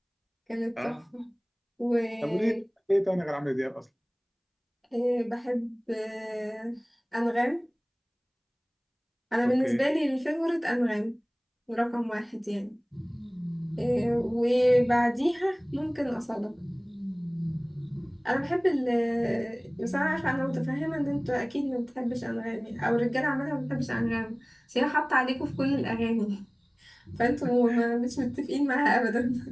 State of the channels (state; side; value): identical; both; correlation 1.00